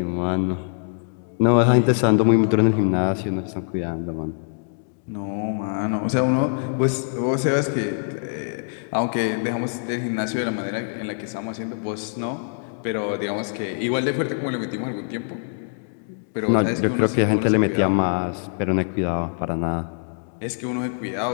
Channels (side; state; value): right; silent; digital silence